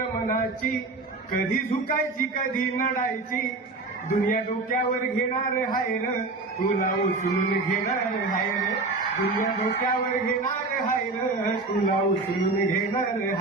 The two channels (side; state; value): left; quieter; 3.5 dB